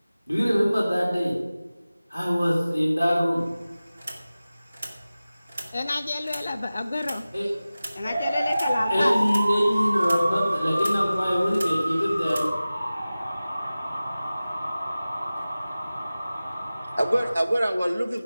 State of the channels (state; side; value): inverted; both; correlation -0.97